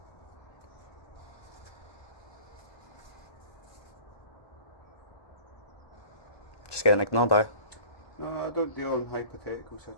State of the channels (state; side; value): late; right; 1.2 ms